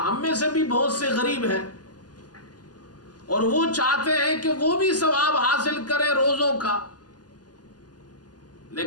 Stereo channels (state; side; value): late; right; 0.69 ms